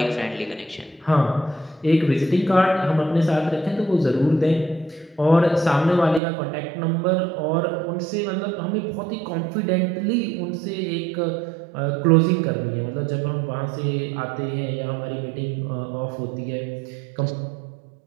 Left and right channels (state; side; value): drops out; left; at 6.2 s